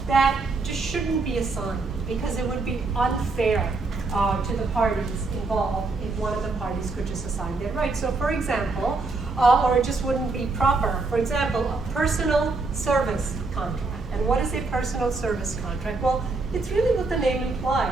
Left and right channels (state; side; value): quieter; left; 3.7 dB